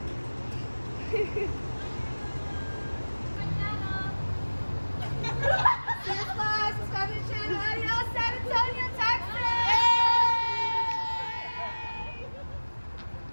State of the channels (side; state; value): both; inverted; correlation -1.00